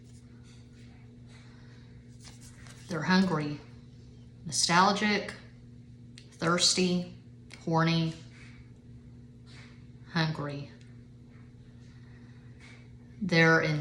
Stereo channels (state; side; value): identical; both; correlation 1.00